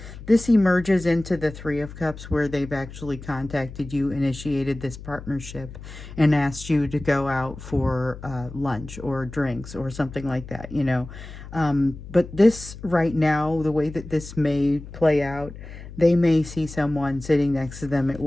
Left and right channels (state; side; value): noise; left; hum, 14 dB below the sound